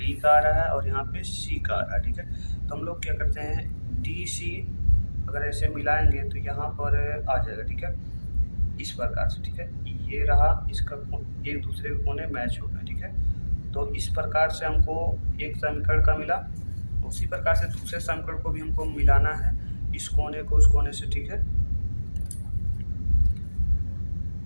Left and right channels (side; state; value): both; inverted; correlation -1.00